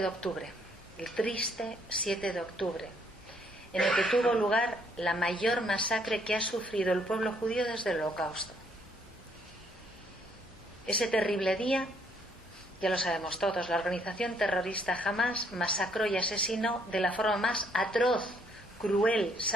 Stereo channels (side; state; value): both; normal; correlation 0.68